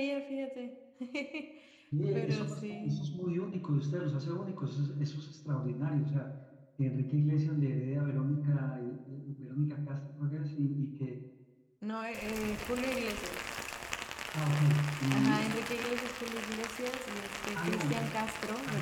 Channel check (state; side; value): identical; both; correlation 1.00